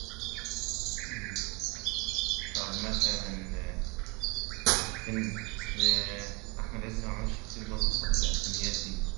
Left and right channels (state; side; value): quieter; left; 24.6 dB